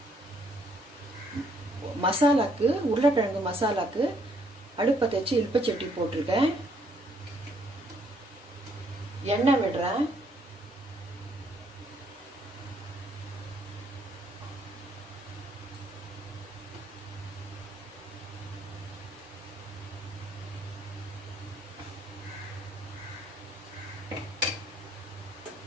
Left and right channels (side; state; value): both; normal; correlation 0.67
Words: மசாலாக்கு உருளைக்கிழங்கு மசாலாக்கு அடுப்பை வச்சு இல்பச்சட்டி போட்டிருக்கேன். எண்ணெய் விடுறேன்.